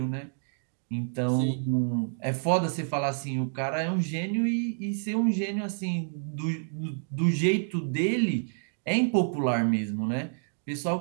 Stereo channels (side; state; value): left; silent; digital silence